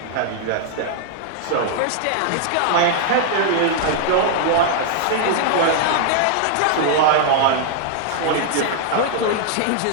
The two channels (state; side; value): different; both; correlation -0.01